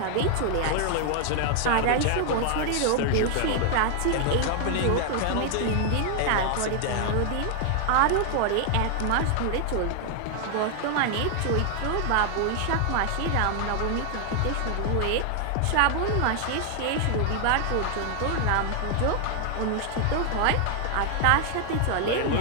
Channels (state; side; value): different; both; correlation 0.00